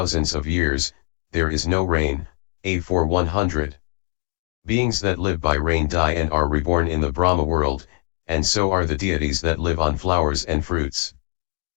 of years, there is no rain, A4 100. Beings that live by rain die and are reborn in the Brahma world, and so are the deities that live on flowers and fruits.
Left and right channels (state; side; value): quieter; right; 35.6 dB